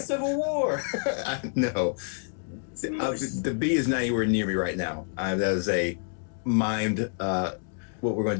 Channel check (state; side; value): silent; right; 59 dB below the other